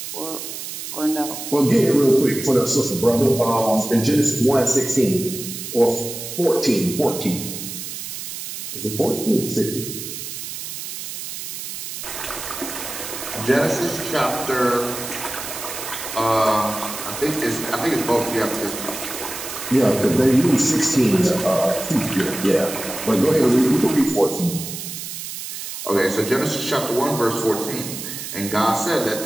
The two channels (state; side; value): noise; right; hiss, 8 dB below the sound